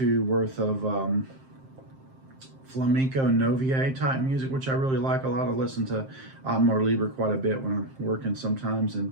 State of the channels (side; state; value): left; late; 7.6 ms